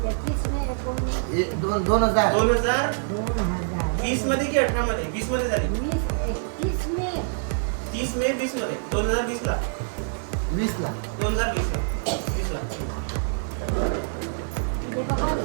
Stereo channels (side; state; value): left; silent; 61 dB below the other